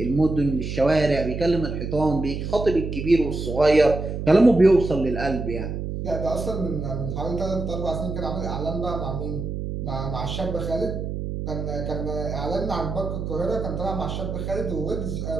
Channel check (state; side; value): noise; right; hum, 4 dB below the sound